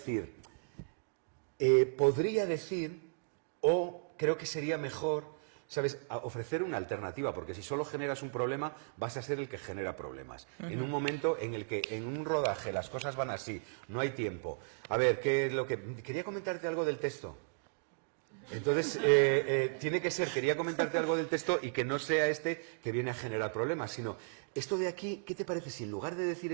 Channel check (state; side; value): silent; left; digital silence